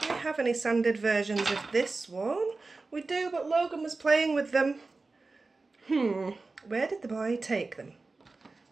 do we have any sanded versions of this one? We do, but Logan was playing with them. Where did the boy take them?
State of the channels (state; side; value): quieter; left; 3.7 dB